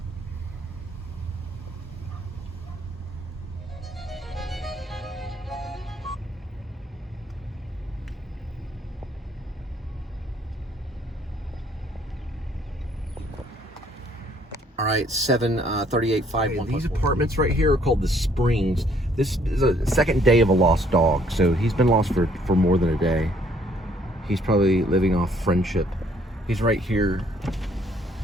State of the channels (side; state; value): both; normal; correlation 0.64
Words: All right, 738-51. These apartments right here are called the Springs. This is a second day of a lost dog, so he's been lost for more than a day. He's probably living off friendship. He's right here.